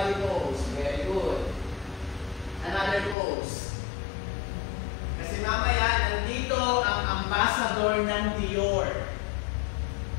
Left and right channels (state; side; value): drops out; right; at 3.2 s